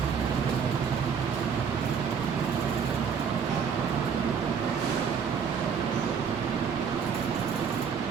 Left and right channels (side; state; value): left; quieter; 6.7 dB